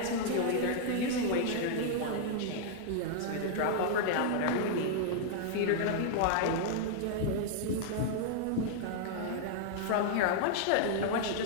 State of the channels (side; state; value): both; different; correlation -0.01